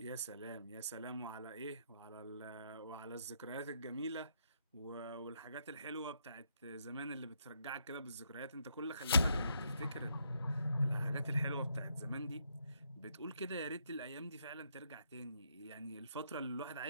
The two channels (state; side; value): inverted; both; correlation -0.75